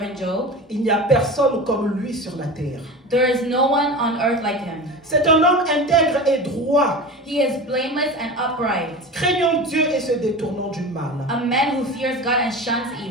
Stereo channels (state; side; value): normal; both; correlation 0.31